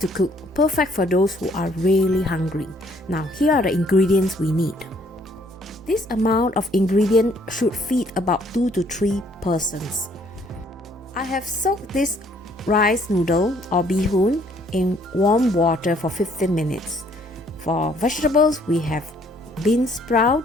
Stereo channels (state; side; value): normal; both; correlation 0.63